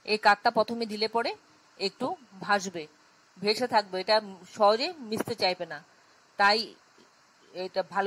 এই কাতটা প্রথমে দিলে পরে একটু ভাসবে, ভেসে থাকবে, এটা সহজে মিশতে চাইবে না। তাই এটা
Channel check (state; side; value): identical; both; correlation 1.00